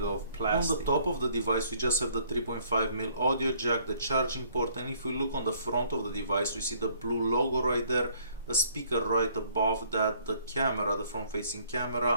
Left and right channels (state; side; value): inverted; both; correlation -0.62